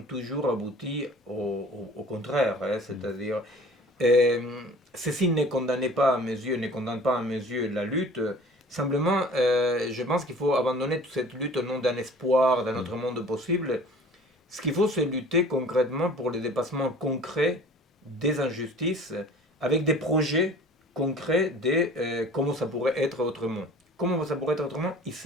toujours aboutis au contraire, hein, c'est-à-dire ceci ne condamne pas à mes yeux, ne condamne pas à mes yeux la lutte. Simplement, je pense qu'il faut abandonner toute cette lutte au nom d'un espoir, d'un autre monde possible. Ce qu'il faut, c'est lutter concrètement pour le dépassement concret des injustices, avec des projets concrets de comment ça pourrait être autrement. Comment ça pourrait être autrement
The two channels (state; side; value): normal; both; correlation 0.46